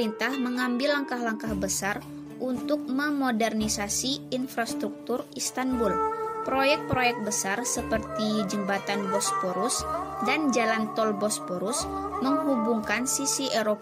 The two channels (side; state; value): both; identical; correlation 1.00